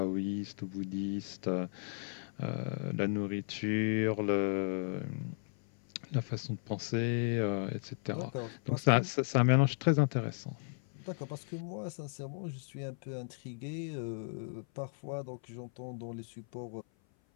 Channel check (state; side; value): silent; right; 54 dB below the other